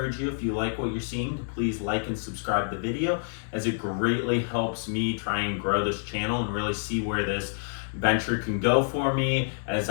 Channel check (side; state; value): right; silent; digital silence